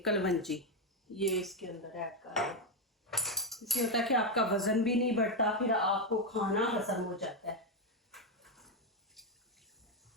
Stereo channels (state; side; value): normal; both; correlation 0.06